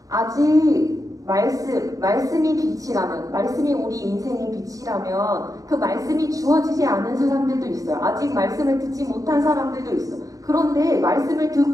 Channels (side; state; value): left; late; 0.17 ms